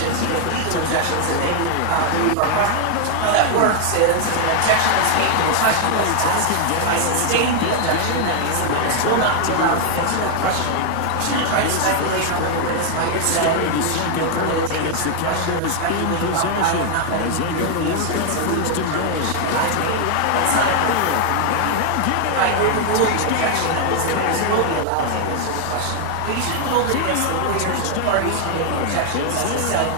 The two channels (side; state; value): both; different; correlation 0.00